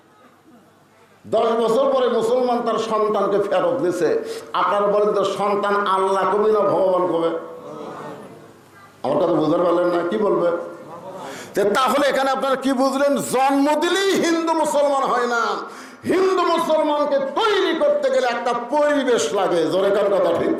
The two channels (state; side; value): identical; both; correlation 1.00